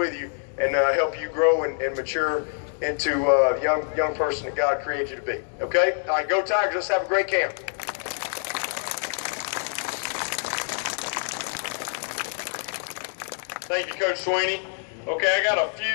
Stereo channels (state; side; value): silent; right; 61 dB below the other